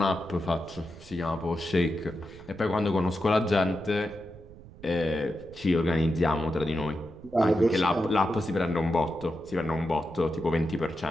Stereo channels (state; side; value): noise; right; rumble, 19 dB below the sound